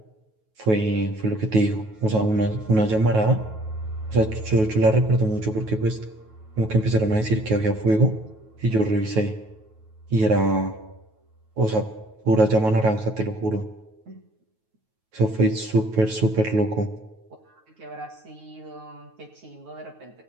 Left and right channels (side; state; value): left; late; 9.3 ms